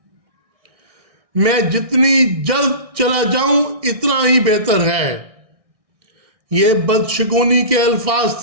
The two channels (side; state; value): left; late; 1.6 ms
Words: میں جتنی جلد چلا جاؤں اتنا ہی بہتر ہے۔ یہ بدشگونی کے الفاظ